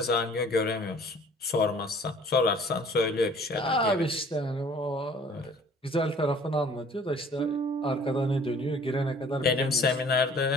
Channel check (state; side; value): normal; both; correlation 0.53